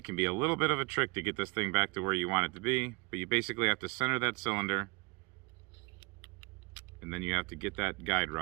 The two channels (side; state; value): left; quieter; 27.1 dB